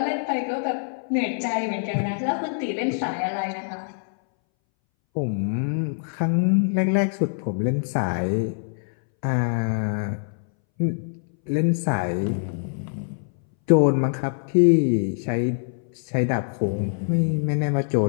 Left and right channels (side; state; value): right; silent; 61 dB below the other